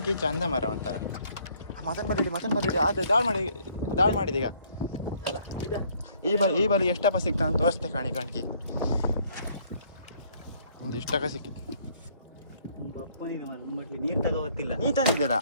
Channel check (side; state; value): both; inverted; correlation -0.62